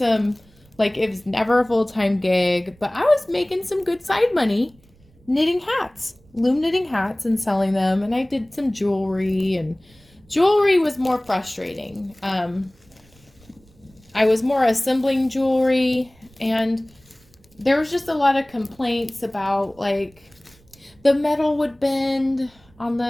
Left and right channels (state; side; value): noise; right; rumble, 30 dB below the sound